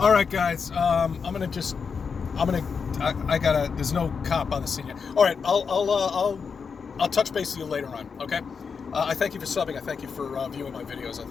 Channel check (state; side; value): quieter; right; 5.8 dB